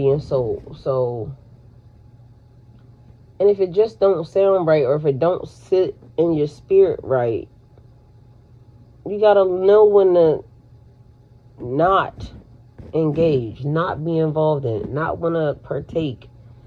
and soul. So, and if it just don't sound right, or if it don't sit in your spirit right, you gotta know when to not engage, not be involved in it, not want to partake,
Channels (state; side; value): identical; both; correlation 1.00